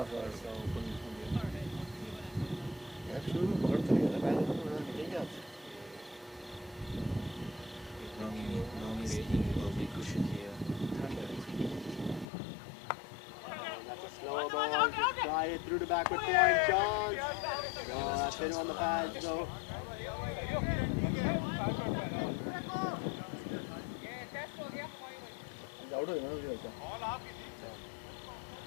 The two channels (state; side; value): drops out; right; at 12.2 s